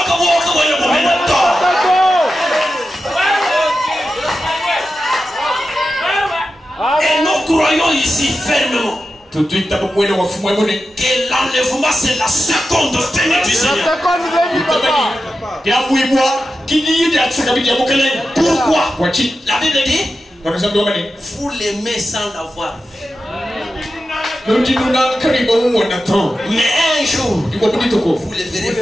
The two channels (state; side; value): normal; both; correlation 0.91